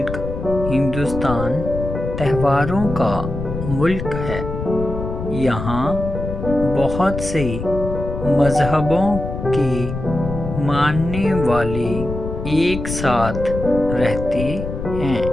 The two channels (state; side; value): noise; left; rumble, 6 dB below the sound